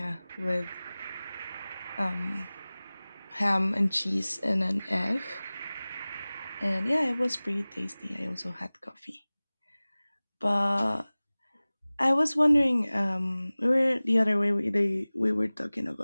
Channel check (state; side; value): inverted; both; correlation -0.99